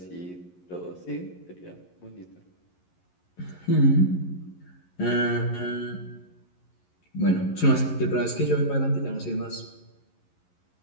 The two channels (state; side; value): late; right; 11 ms